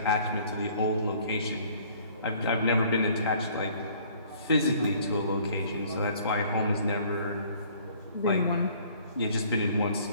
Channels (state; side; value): inverted; both; correlation -0.57